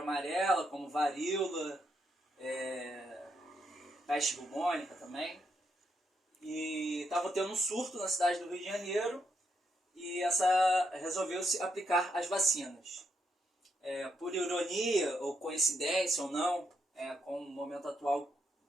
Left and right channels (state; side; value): normal; both; correlation 0.79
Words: amarela, como varíola, peste bubônica também. E estava tendo um surto na cidade do Rio de Janeiro e resolveu-se aplicar as vacinas. Por ironia ou coincidência ou não, com o momento